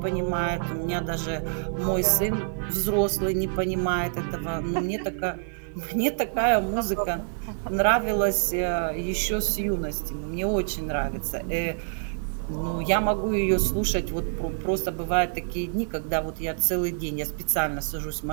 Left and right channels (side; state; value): left; silent; digital silence